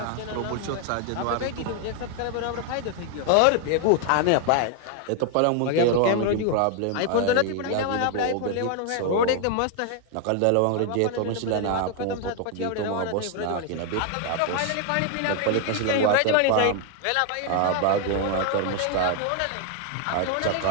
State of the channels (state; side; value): different; both; correlation 0.01